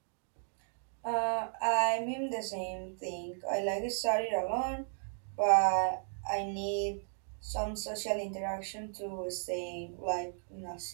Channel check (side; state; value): left; silent; digital silence